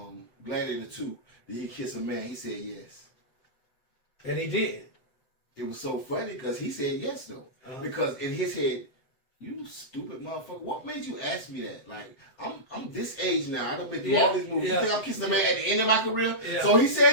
Gladiator 2, did he kiss a man? He said yes. And he did. It was so funny because he said yes, though. Because in his head, you stupid motherfucker, what made you ask me that? Like, I'm this age now. I done been through all these movies. You think I'm kissing a man at the end of my career? Yeah. So he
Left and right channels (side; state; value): right; late; 7.9 ms